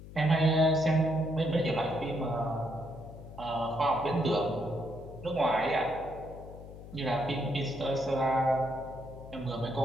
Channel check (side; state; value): left; noise; hum, 15 dB below the sound